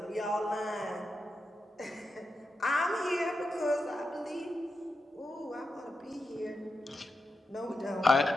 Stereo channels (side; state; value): both; normal; correlation 0.88